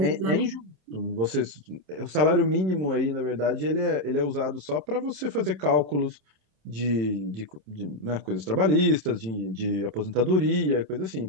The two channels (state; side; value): late; left; 27 ms